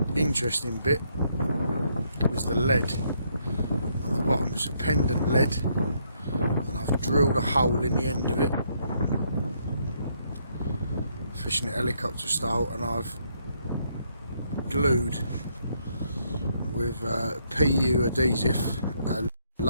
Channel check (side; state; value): both; inverted; correlation -0.73